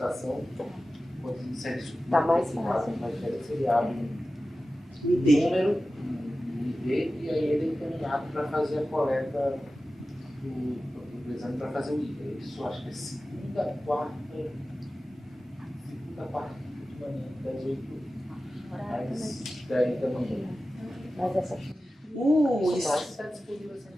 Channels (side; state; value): both; normal; correlation 0.95